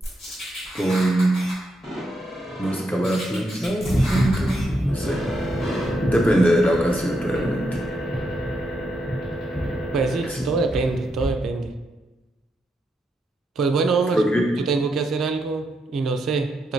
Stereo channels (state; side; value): normal; both; correlation 0.81